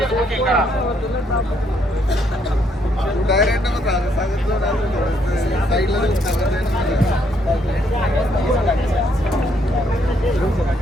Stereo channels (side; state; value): both; normal; correlation 0.71